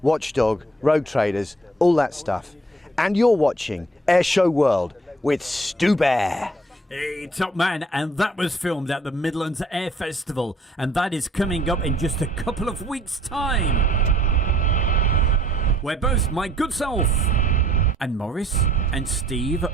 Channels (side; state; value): both; normal; correlation 0.60